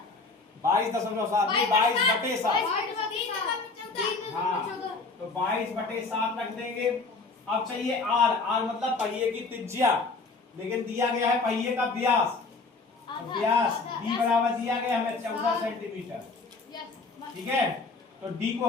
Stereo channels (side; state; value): right; quieter; 3.9 dB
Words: 22.7। 22 बटे 7। हाँ, तो 22 बटे 7 रख देंगे। अब चाहिए आर, आर मतलब पहिए की त्रिज्या, लेकिन दिया गया है पहिए का व्यास। व्यास डी बराबर दिया गया हमें 14 सेंटीमीटर। ठीक है, तो डी को